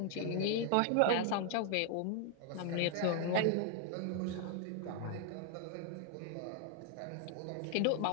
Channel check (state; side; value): different; both; correlation 0.00